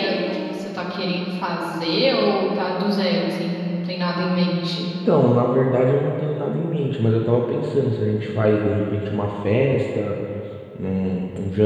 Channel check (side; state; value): both; identical; correlation 1.00